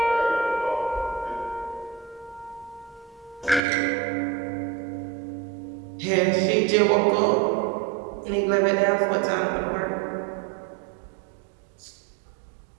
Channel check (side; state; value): left; drops out; at 3.6 s